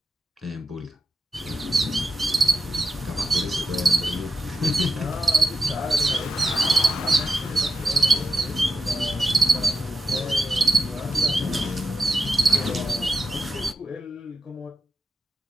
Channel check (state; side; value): normal; both; correlation 0.88